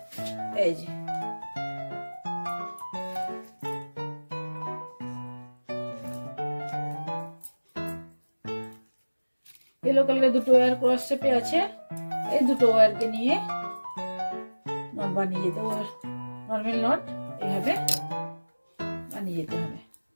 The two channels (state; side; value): inverted; both; correlation -1.00